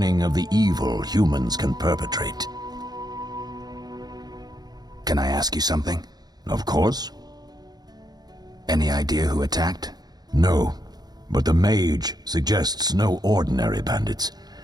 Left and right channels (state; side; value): late; left; 0.19 ms